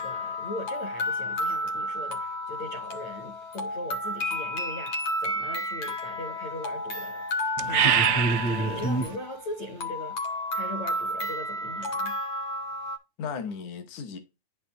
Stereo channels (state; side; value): late; right; 9.3 ms